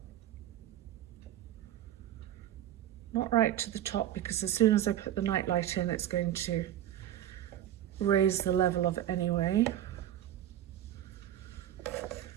Not right to the top, because as soon as I put the nightlight in, it's going to raise the level of it anyway.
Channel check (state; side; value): quieter; left; 11.7 dB